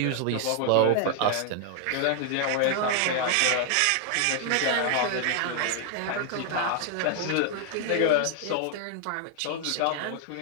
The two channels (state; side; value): different; both; correlation 0.00